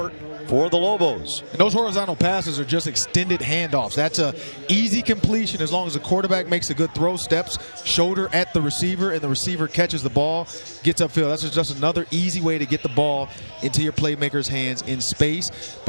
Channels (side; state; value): both; inverted; correlation -1.00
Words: for the Lobos. And those horizontal passes are just extended handoffs. That's a easy completion as long as the quarterback makes a good throw, steps shoulder at the receiver, and the receiver catches the ball, gets upfield. That's just another easy way to get the ball into your playmaker's hands in space.